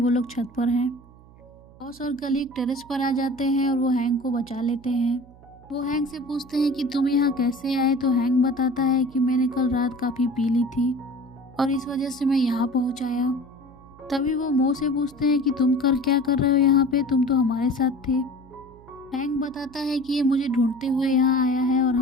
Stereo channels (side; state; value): right; noise; hum, 23 dB below the sound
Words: लोग छत पर हैं। बॉस और कलीग टेरेस पर आ जाते हैं और वो हैंक को बचा लेते हैं। वो हैंक से पूछते हैं कि तुम यहाँ कैसे आए, तो हैंक बताता है कि मैंने कल रात काफ़ी पी ली थी और इस वजह से मैं यहाँ पहुँच आया। तभी वो मो से पूछते हैं कि तुम क्या कर रहे हो यहाँ पे, तुम तो हमारे साथ थे। हैंक बताता है कि ये मुझे ढूंढते हुए यहाँ आया है और